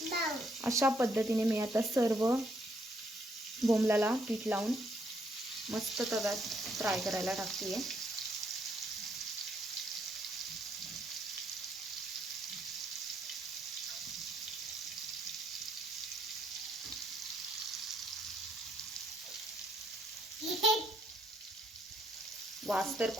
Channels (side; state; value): both; normal; correlation 0.71